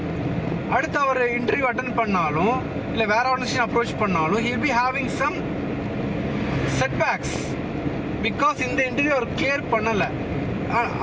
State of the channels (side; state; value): both; identical; correlation 1.00